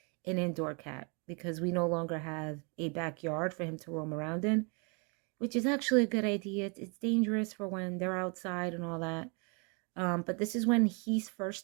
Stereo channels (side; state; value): left; quieter; 34.4 dB